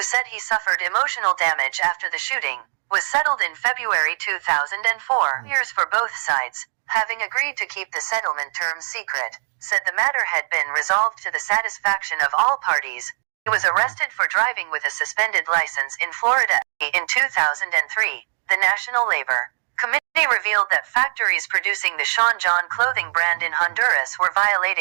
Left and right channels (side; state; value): left; silent; digital silence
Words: said he suffered emotional damage after the shooting, was settled in February 2004. Years for both sides, having agreed to keep the settlement terms secret, said the matter had been resolved to the satisfaction of all parties. He was arrested for driving with a suspended license in Florida. In 2003, the National Labor Committee revealed that factories producing the Sean John clothing brand in Honduras were